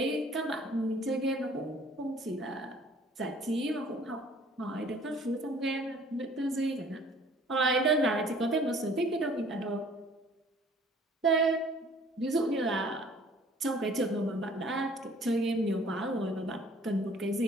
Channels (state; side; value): normal; both; correlation 0.54